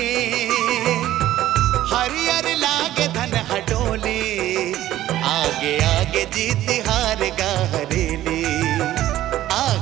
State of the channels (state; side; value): quieter; left; 13.9 dB